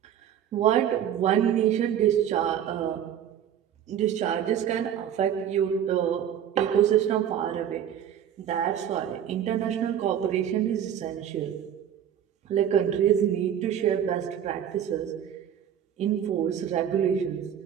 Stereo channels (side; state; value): left; quieter; 9.6 dB